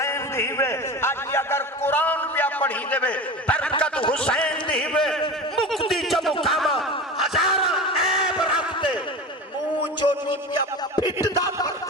دی بے آج بھی اگر قرآن پہ پڑھی دے بے برکت حسین دی بے مکتی جب کاما ہزارہ عیب رکھتے مونچو نیپیا پھٹ دا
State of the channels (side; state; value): both; normal; correlation 0.30